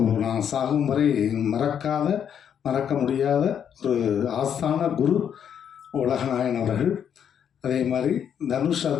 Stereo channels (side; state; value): right; quieter; 8.5 dB